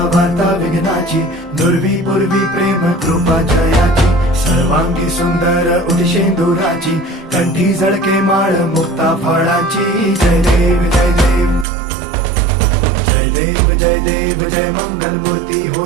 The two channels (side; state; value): left; drops out; at 11.7 s